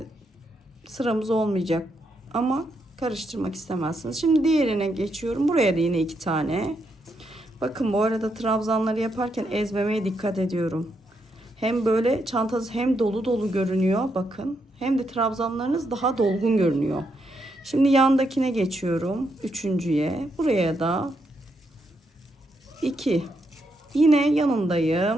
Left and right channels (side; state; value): both; normal; correlation 0.80